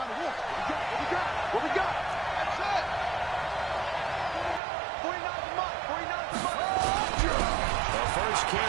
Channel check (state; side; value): drops out; left; at 4.6 s